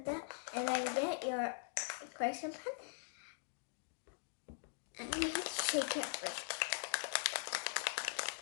that, and then get your correction pen and you take it first.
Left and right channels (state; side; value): silent; right; digital silence